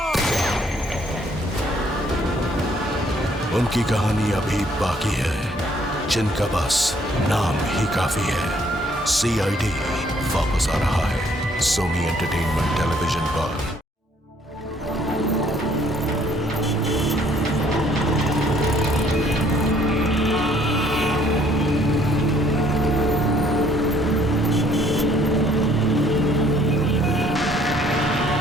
उनकी कहानी अभी बाकी है, जिनका बस नाम ही काफी है। सीआईडी वापस आ रहा है सोनी एंटरटेनमेंट टेलीविजन पर।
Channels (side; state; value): both; normal; correlation 0.63